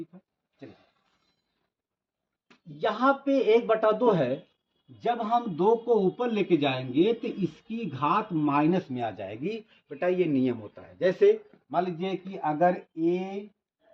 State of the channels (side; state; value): both; identical; correlation 1.00